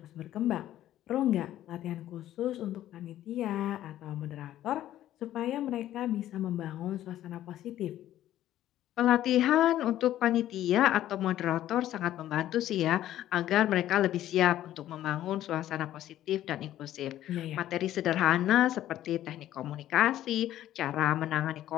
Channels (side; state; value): right; quieter; 12.9 dB